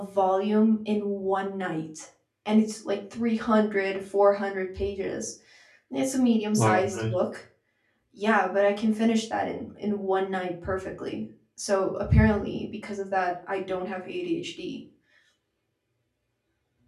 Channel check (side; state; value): both; identical; correlation 1.00